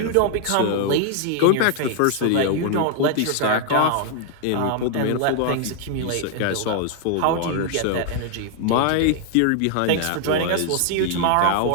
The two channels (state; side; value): different; both; correlation 0.00